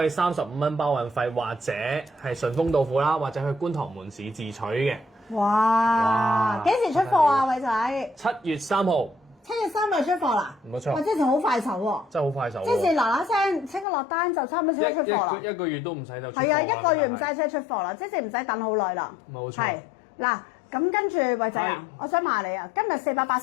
以35蚊包運費，或者係順豐到付啦，或者去觀塘門市自取嘅。哇！幾時出貨啊，偉仔？7月3號。7月3日出貨啦。冇錯。哇！之前好快手喎。真係好快手。即係嗱嗱聲，即刻落單就差唔多即刻出貨啦。一個月都唔使就出貨啦。係啊，一個月唔使即刻出貨啦，即係唔使等好耐啦。冇錯。係嗱，咁跟住偉仔啊，我想問你啊，今日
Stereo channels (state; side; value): drops out; right; at 13.9 s